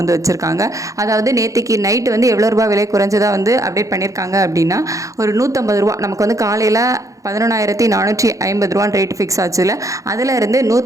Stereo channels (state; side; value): late; left; 0.16 ms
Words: வந்து வச்சுருக்காங்க. அதாவது நேற்றுக்கு நைட்டு வந்து எவ்வளோ ரூபா விலை குறைஞ்சதாக வந்து அப்டேட் பண்ணியிருக்காங்க அப்படின்னா ஒரு 150 ரூபா. நமக்கு வந்து காலையில் 11,450 ரூபான்னு ரேட் ஃபிக்ஸ் ஆச்சுல, அதில் இருந்து